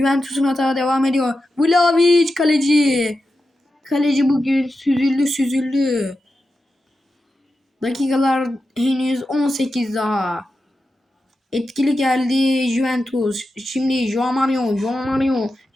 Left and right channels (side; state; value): both; normal; correlation 0.90